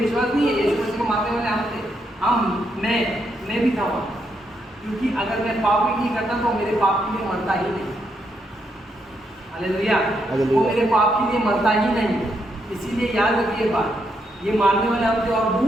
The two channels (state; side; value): normal; both; correlation 0.78